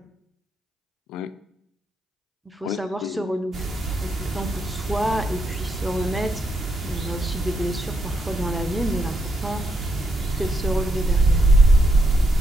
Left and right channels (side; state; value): both; normal; correlation 0.79